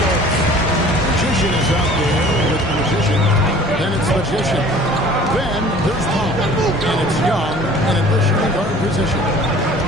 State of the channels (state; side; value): normal; both; correlation 0.48